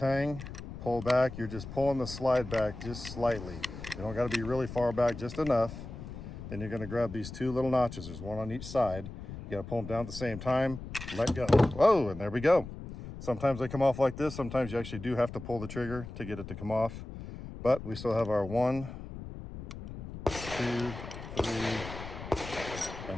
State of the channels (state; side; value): noise; left; rumble, 11 dB below the sound